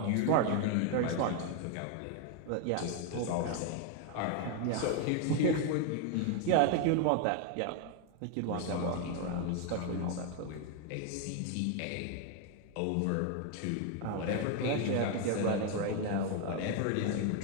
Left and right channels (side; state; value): both; different; correlation 0.01